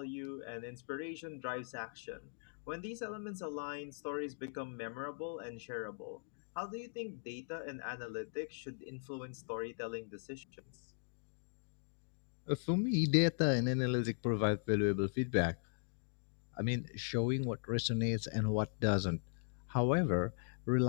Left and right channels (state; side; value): silent; right; digital silence